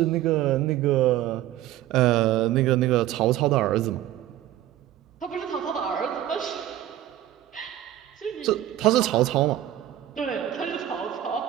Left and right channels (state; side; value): quieter; left; 13.0 dB